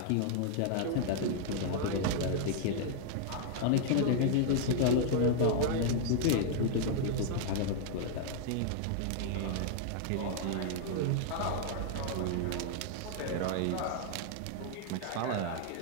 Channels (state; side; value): different; both; correlation 0.00